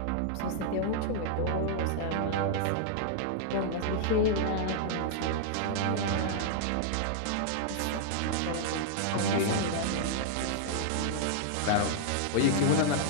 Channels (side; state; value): both; different; correlation -0.01